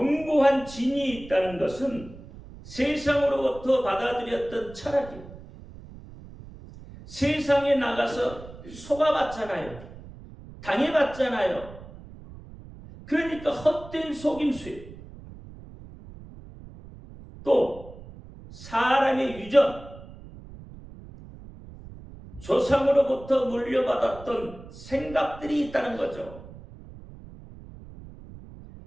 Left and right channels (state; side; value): noise; right; rumble, 17 dB below the sound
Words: 진이 있다는 것은 세상으로부터 받아들였던 철학이에요. 세상에 나가서 속아봤잖아요. 당해봤잖아요. 그러니까 헛된 속임수예요. 또 사람의 유전, 조상으로부터 물려받았던 생각들이 있다는 거죠.